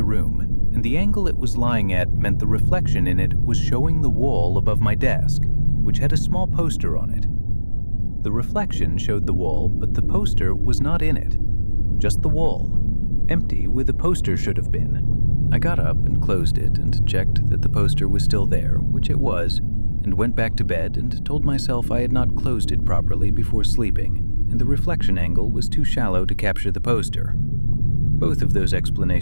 room, and the angle it was lying at meant the reflection in it was showing the wall above my desk, which had a small poster on it. The reflection showed the wall, but the poster was not in it. Just the wall, empty where the poster should have been. I got up and closed it and checked that the poster was still there, which it was, and went back to bed and told myself I had not closed it properly before sleeping, and the reflection angle was too shallow to capture the poster. Both of those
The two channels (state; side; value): inverted; both; correlation -1.00